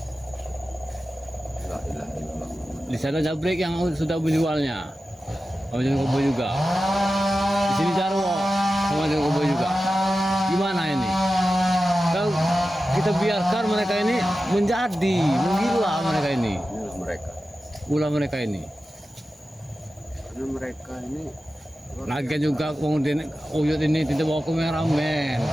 Di sana Jabrik yang sudah menjualnya, sama John Kobo juga. Di sini Jarwo sama John Kobo juga. Gimana ini? Kalau kita biarkan mereka ini menjadi menggila mereka ini. Inilah mereka. Ulah mereka ini. Karena mereka ini Lagi juga kemudian Uyut ini tidak bawa kameramen.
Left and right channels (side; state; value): both; normal; correlation 0.93